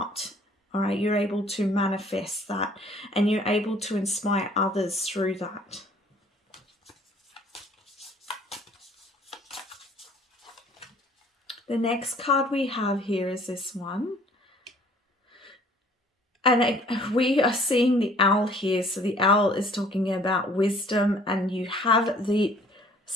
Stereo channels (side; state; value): both; normal; correlation 0.56